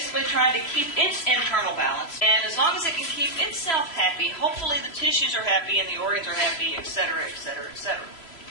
trying to keep its internal balance, and as long as it can keep itself happy, hopefully the tissues are happy and the organs are happy, etc., etc., etc.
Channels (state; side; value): late; right; 3.0 ms